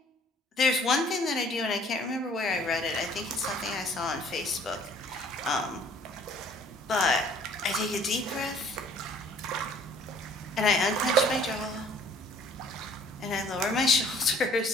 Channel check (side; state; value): both; normal; correlation 0.55